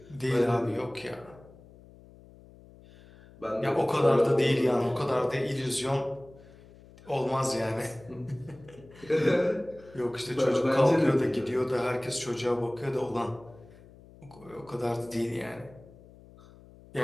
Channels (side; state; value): left; noise; hum, 23 dB below the sound